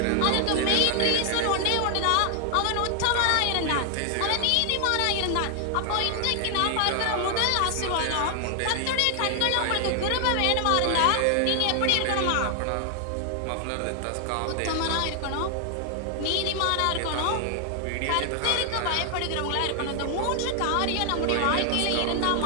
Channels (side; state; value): both; different; correlation 0.00